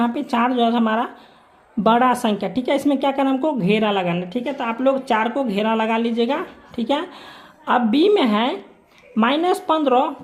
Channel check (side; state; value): both; identical; correlation 1.00